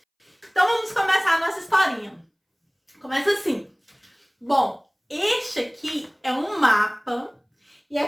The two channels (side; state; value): both; identical; correlation 1.00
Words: Então vamos começar a nossa historinha. Começa assim. Bom, este aqui é um mapa e é